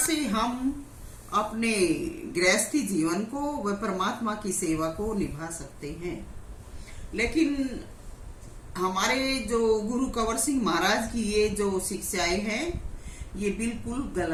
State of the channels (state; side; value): identical; both; correlation 1.00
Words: हम अपने गृहस्थी जीवन को व परमात्मा की सेवा को निभा सकते हैं। लेकिन हमारे जो गुरु कंवर सिंह महाराज की ये जो शिक्षाएं हैं ये बिल्कुल